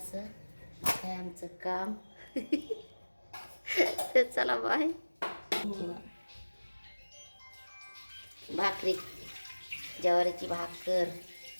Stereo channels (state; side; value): inverted; both; correlation -1.00